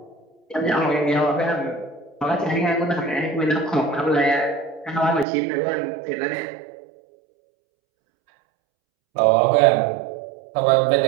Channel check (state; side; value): drops out; left; at 5.2 s